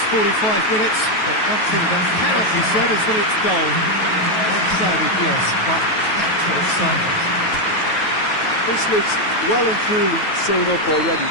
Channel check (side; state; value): right; late; 9.3 ms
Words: 45 minutes, but one thing that cannot be said is that it's dull. One-sided, yes, but packed with excitement. This looks well and truly sewn up already,